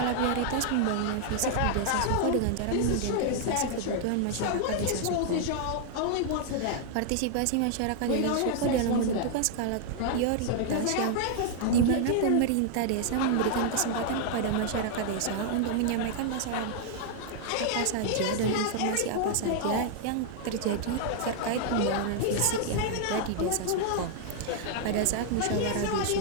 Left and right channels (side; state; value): both; different; correlation 0.00